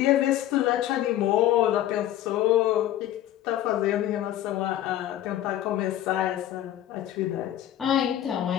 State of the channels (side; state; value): right; quieter; 12.7 dB